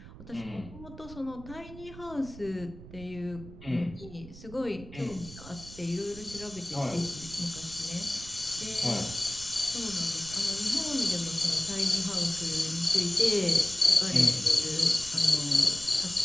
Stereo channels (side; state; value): right; noise; rumble, 16 dB below the sound